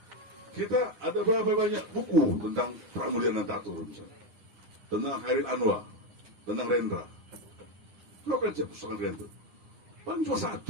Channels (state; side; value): late; left; 9.6 ms